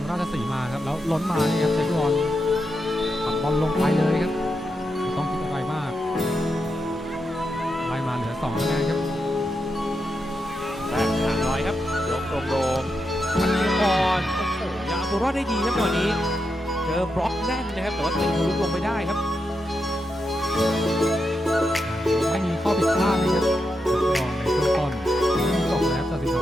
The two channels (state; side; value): normal; both; correlation 0.86